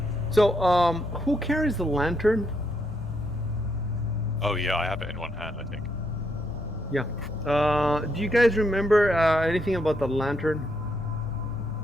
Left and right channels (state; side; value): normal; both; correlation 0.77